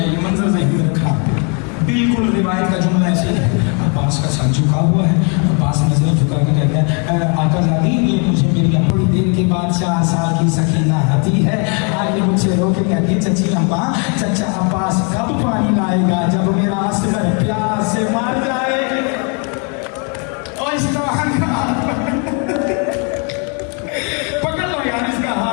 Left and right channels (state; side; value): quieter; right; 37.1 dB